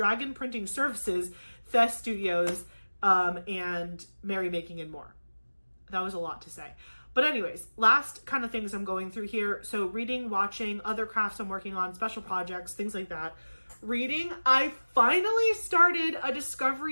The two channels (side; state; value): both; inverted; correlation -1.00